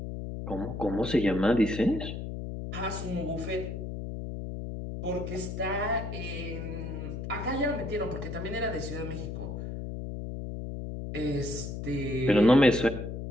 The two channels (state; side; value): noise; left; hum, 6 dB below the sound